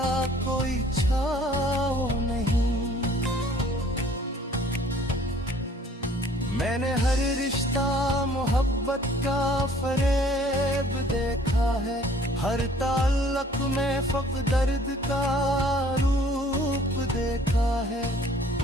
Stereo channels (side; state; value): both; normal; correlation 0.55